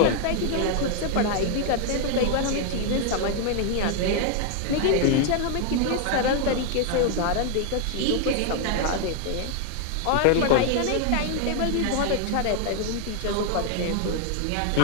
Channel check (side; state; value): both; different; correlation 0.00